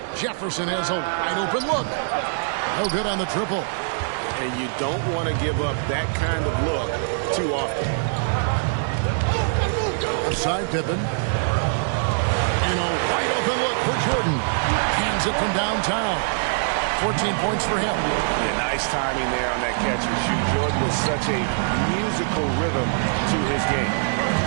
Jefferson has a wide open look. No good on the triple. And you don't want to give up that kind of look too often. Outside Pippen. And a wide open look for Jordan. Cans it from downtown. 14 points for him. Yeah, nice timing there on that catch and shoot. Jordan with such a musical rhythm to his game.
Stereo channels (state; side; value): silent; left; digital silence